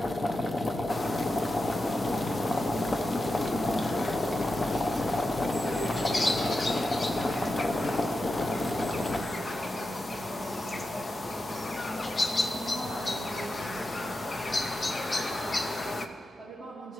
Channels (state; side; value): normal; both; correlation 0.90